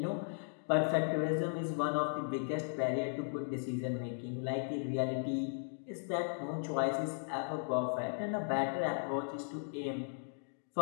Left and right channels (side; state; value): right; silent; digital silence